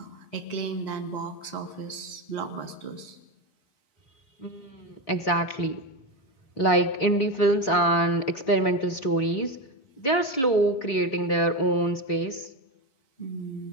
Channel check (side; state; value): right; late; 4.2 ms